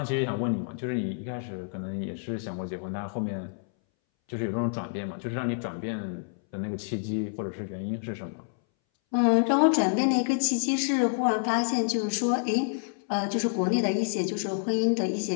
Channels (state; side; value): silent; right; 59 dB below the other